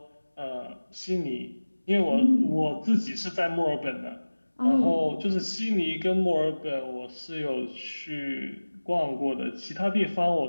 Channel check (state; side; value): inverted; both; correlation -1.00